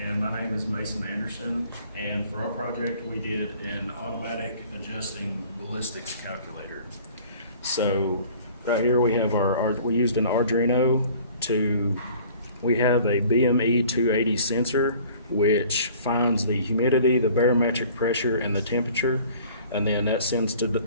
my name is Mason Anderson, and for our project we did an automatic adjusting ballistics calculator. So right here we have we used an Arduino we have a BME 280 sensor which finds the humidity, the barometric pressure, and the temperature, and then that sends the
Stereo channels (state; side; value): inverted; both; correlation -0.51